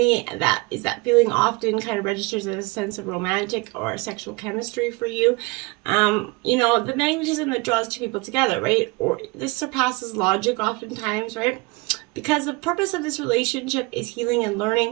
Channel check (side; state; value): left; quieter; 25.8 dB